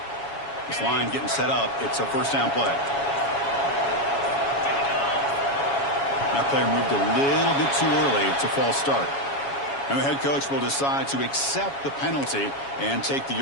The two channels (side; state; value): right; late; 7.2 ms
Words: This line getting set up. It's a first down play. That player moved a little bit too early. It's a false start. And the head coach will decide to accept the penalty and take the